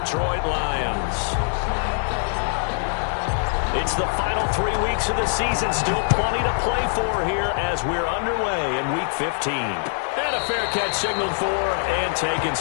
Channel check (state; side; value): silent; right; 59 dB below the other